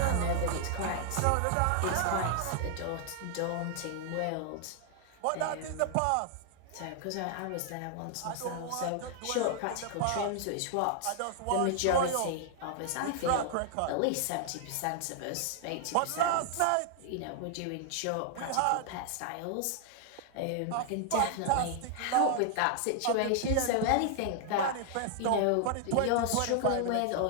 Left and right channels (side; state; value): both; different; correlation 0.00